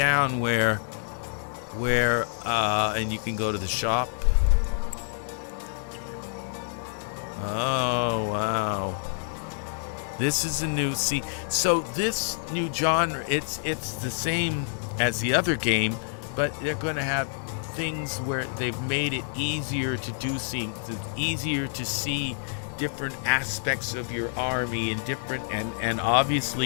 where, and you can go to the shop. Oh wow, this is a new. So this new genre, it's the same as the other game, but they're going to have things where they've made it easier to do things, easier to see different aspects of your army and different and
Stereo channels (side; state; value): right; silent; digital silence